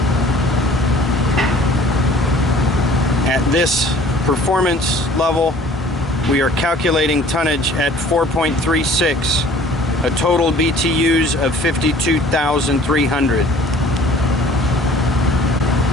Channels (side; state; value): both; normal; correlation 0.51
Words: At this performance level, we are calculating tonnage at 4.36, a total BTUs of 52,300.